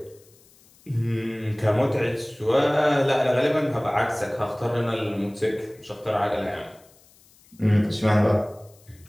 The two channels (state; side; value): noise; left; hiss, 29 dB below the sound